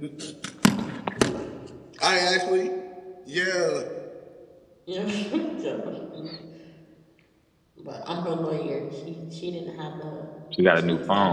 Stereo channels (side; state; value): both; identical; correlation 1.00